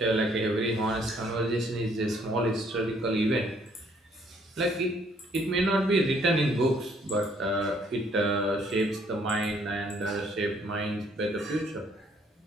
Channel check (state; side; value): normal; both; correlation 0.65